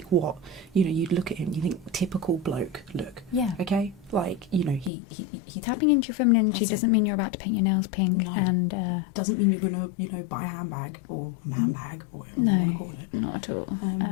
what, you know, you'd look at him, you think typical bloke look, Yeah. okay? Like, you know, he Tapping into your feminine energy That's it. doesn't mean you're about to paint your nails pink. No. And doesn't mean you're gonna, you know, buy a handbag or a man bag or whatever you No. want to call it. not at all.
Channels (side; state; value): right; drops out; at 4.9 s